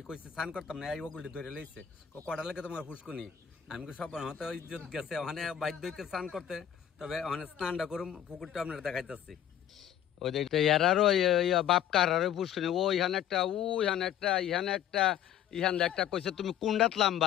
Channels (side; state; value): right; quieter; 10.3 dB